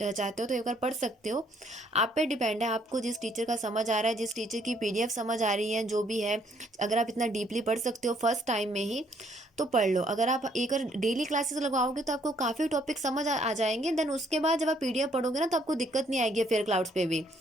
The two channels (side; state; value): both; normal; correlation 0.67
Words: हो तो एक बार पढ़ सकते हो। आप पे डिपेंड है, आपको जिस टीचर का समझ आ रहा है, जिस टीचर की पीडीएफ समझ आ रही है, जो भी है। अगर आप इतना डीपली पढ़ सकते हो फर्स्ट टाइम में ही तो पढ़ लो। अगर आप एक बार डेली क्लासेस लगवाओगे तो आपको काफ़ी टॉपिक समझ आ जाएंगे। देन उसके बाद जब आप पीडीएफ पढ़ोगे ना तो आपको दिक्कत नहीं आएगी। फेयर क्लाउड्स पे भी